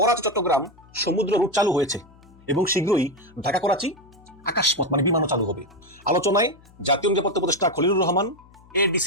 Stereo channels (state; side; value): noise; left; hum, 26 dB below the sound